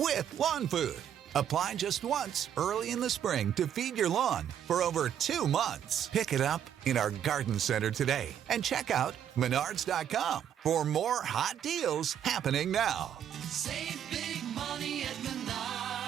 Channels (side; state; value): left; quieter; 9.6 dB